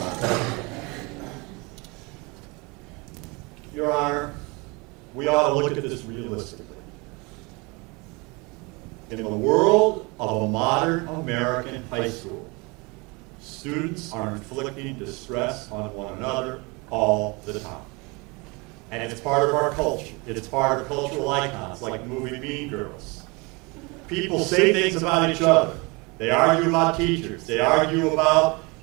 Your Honor, we ought to look at this realistically. In the world of a modern American high school, students are inflicting distress on one another all the time. And it's part of our culture. It's part of cultural icons like the movie Mean Girls. People say things about each other. They argue about teachers. They argue about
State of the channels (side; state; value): left; quieter; 27.5 dB